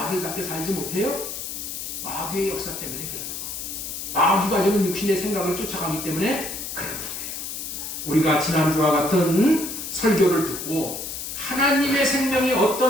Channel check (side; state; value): left; noise; hiss, 6 dB below the sound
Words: 살지 못해요? 마귀의 역사 때문에 그러는 거예요. 마귀가 지금 육신의 생각을 쫓아가기 때문에 그러는 거예요. 우리가 지난주와 같은 설교를 듣고 하나님의 생명이